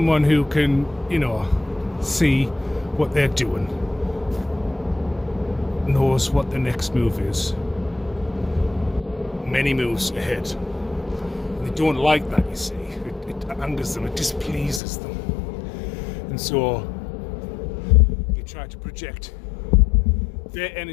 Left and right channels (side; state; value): right; drops out; at 14.8 s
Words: who can, you know, see what they're doing, knows what the next move is, many moves ahead. They don't like that, you see. It angers them, it displeases them, and so they try to project their